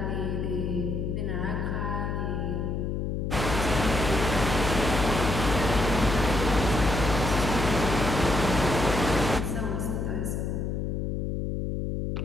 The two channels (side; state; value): left; noise; hum, 2 dB below the sound